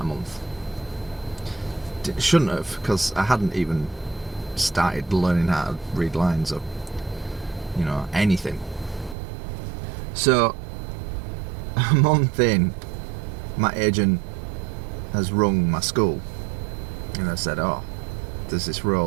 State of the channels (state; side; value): drops out; left; at 9.2 s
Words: a month. Shouldn't have, because I hadn't even started learning how to read lines or anything. So a month in, my agent has rung my school and I said, oh, there's this